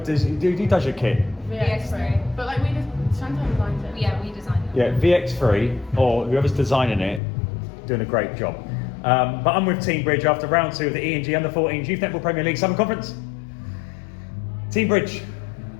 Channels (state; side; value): drops out; right; at 7.2 s